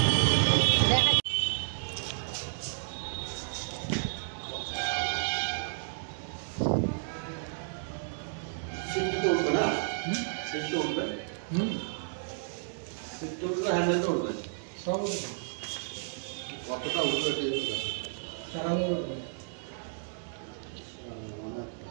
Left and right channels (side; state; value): left; silent; digital silence